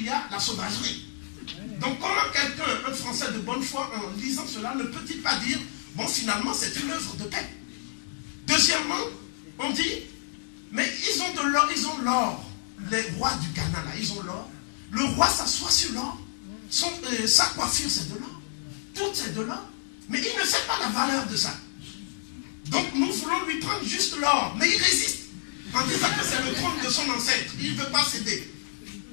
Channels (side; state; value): right; silent; digital silence